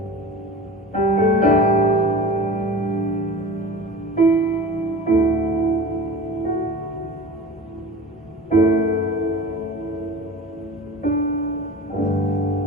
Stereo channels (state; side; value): normal; both; correlation 0.35